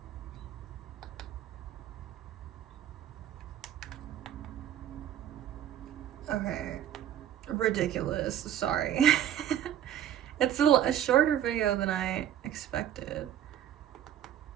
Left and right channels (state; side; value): quieter; left; 10.9 dB